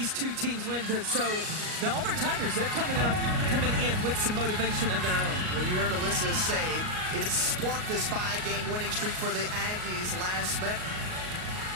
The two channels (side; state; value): left; late; 38 ms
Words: two teams went, so the Auburn Tigers, they're coming in with some motivation of their own. Well, you heard Alyssa say it sparked this 5-game winning streak for the Aggies last met.